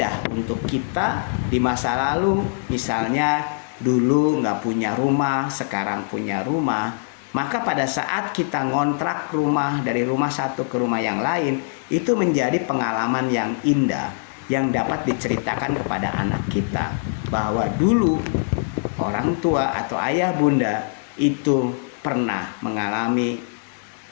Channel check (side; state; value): right; silent; digital silence